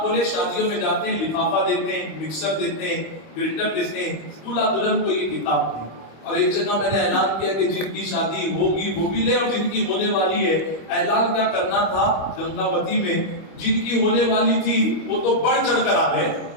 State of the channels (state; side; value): late; right; 25 ms